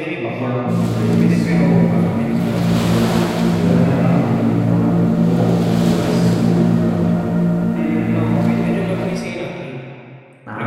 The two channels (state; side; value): identical; both; correlation 1.00